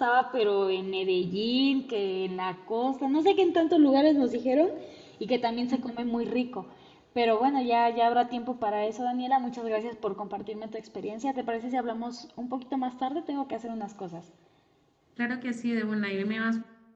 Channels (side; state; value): both; identical; correlation 1.00